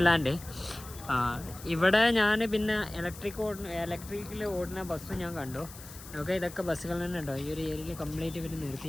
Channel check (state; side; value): noise; left; hiss, 16 dB below the sound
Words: ഇവിടെ ഞാൻ പിന്നെ ഇലക്ട്രിക്കിൽ ഓടുന്ന ബസ്സും ഞാൻ കണ്ടു. ഓക്കെ, ഇതൊക്കെ ബസ്സുകൾ തന്നെ ഉണ്ടോ. ഈ ഒരു ഏരിയയിൽ കംപ്ലീറ്റ് ഇവർ